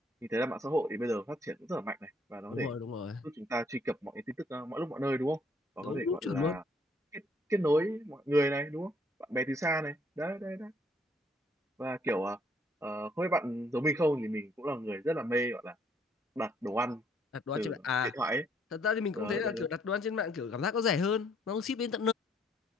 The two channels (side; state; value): both; normal; correlation 0.66